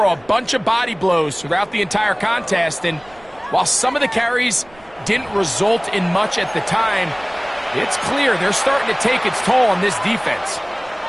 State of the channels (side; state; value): right; noise; rumble, 27 dB below the sound